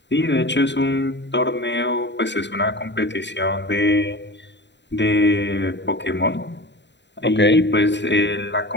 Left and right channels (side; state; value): right; late; 0.52 ms